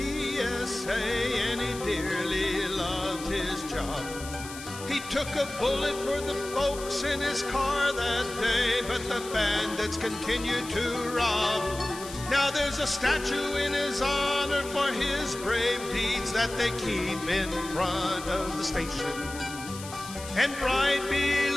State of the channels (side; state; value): left; noise; hiss, 13 dB below the sound